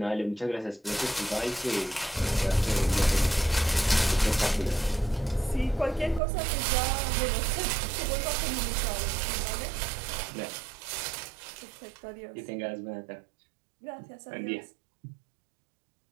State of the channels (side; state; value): left; drops out; at 6.2 s